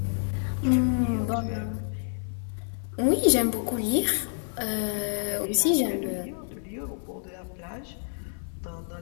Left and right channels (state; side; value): silent; right; 57 dB below the other